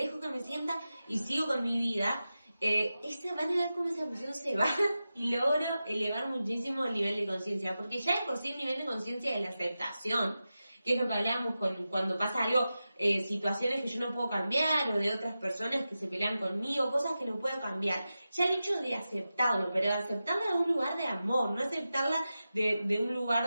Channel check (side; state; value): both; inverted; correlation -0.93